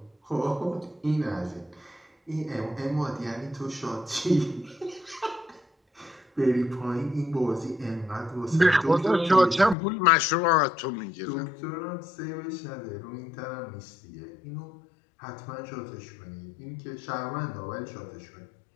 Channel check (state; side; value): drops out; right; at 9.8 s